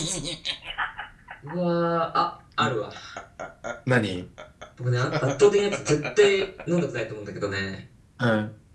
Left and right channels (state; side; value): identical; both; correlation 1.00